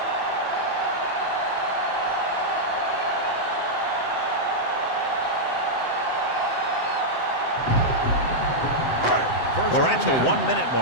We're at the 1-minute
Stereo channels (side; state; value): right; late; 7.8 ms